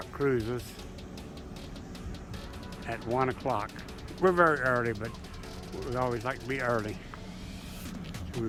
cruises at 1 o'clock. We're very early, but we always like to be early. So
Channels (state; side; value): identical; both; correlation 1.00